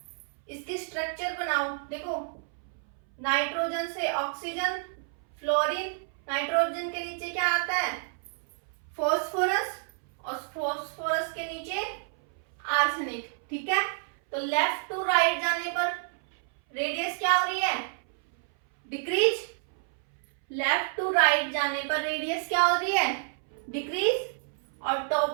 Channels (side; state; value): left; silent; 59 dB below the other